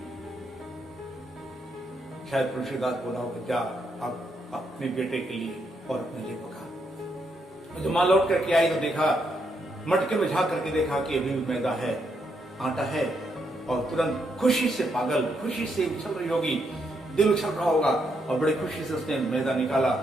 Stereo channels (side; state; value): both; normal; correlation 0.78